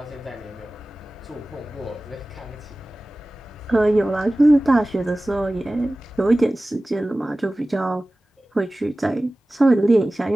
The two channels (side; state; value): both; normal; correlation 0.97